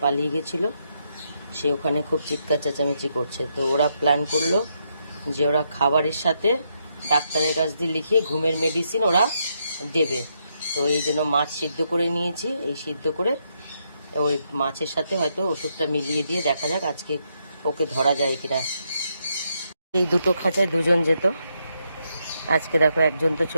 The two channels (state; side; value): inverted; both; correlation -0.79